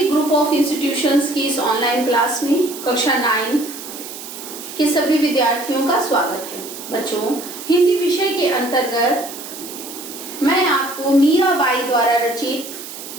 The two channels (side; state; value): right; noise; hiss, 12 dB below the sound